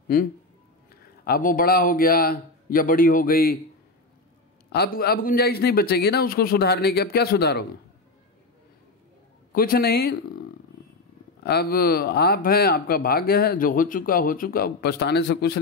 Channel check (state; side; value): quieter; right; 3.2 dB